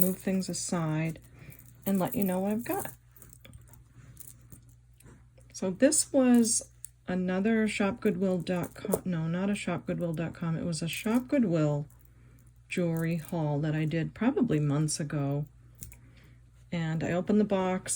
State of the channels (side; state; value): both; identical; correlation 1.00